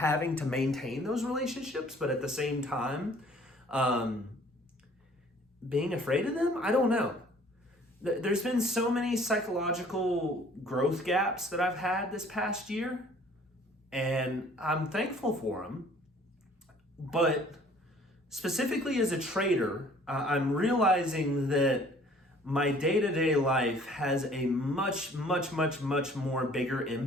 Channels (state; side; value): normal; both; correlation 0.55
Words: to maintain those relationships, but at the same time, being afraid of them? I don't know. There's been so many psychological growth gaps that I've had this past year, and I'm thankful for them. But specifically as a trader, I'm realizing that my day-to-day life has a much more bigger